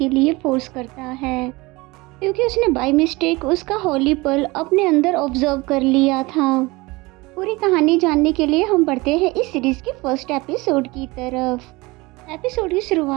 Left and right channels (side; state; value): left; quieter; 23.0 dB